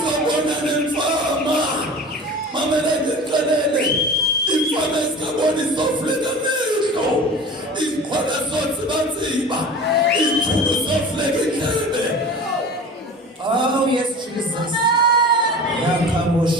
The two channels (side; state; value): both; normal; correlation 0.37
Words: nemfama, mamela ndixelele, imfama ezingaboni zofuleka amehlo, izixhwala zotsibatsiba, izithulu zofuleka indlebe. Oh yes, Jesus.